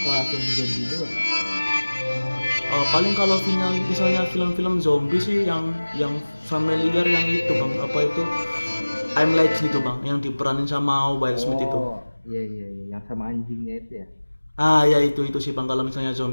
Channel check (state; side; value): inverted; both; correlation -1.00